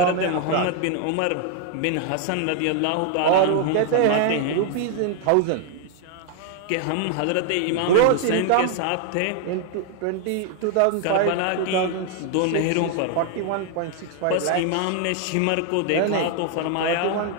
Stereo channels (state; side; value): different; both; correlation 0.00